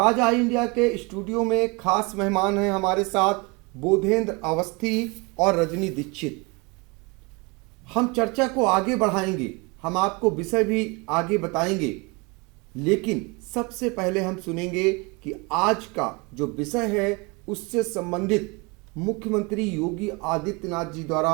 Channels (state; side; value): quieter; left; 28.2 dB